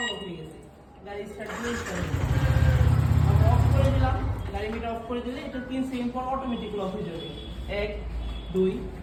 হয়ে গেছে। গাড়ি স্টার্ট অফ করে দিলাম, গাড়ি মিটার অফ করে দিলে এটা 3 সেকেন্ড পর অটোমেটিক লক হয়ে যাবে। 1 2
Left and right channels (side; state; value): both; identical; correlation 1.00